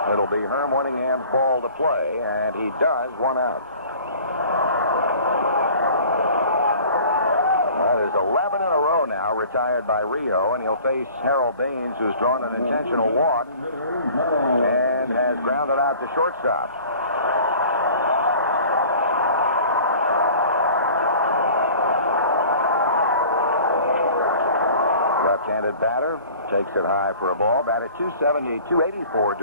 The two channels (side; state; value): both; inverted; correlation -0.47